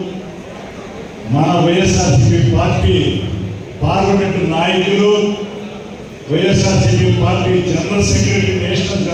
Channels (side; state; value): both; identical; correlation 1.00